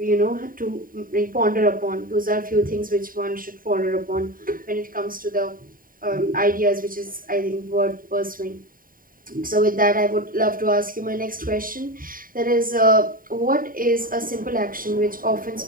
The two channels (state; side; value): late; left; 0.41 ms